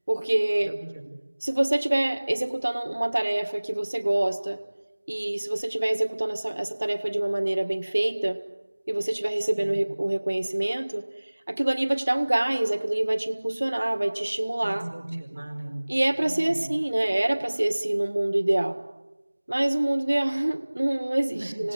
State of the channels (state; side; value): inverted; both; correlation -1.00